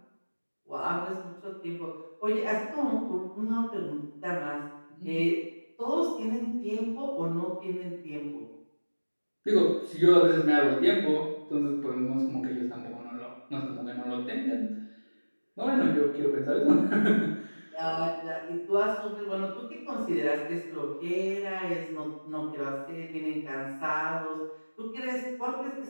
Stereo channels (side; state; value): both; inverted; correlation -1.00